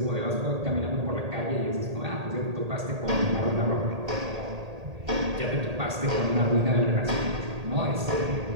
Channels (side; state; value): left; late; 1.8 ms